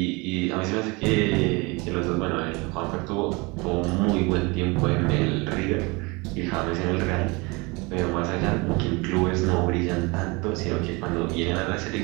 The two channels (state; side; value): quieter; left; 26.6 dB